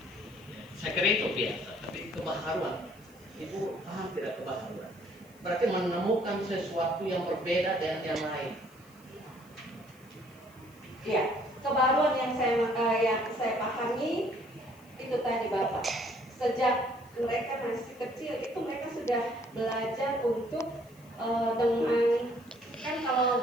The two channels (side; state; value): left; noise; hiss, 28 dB below the sound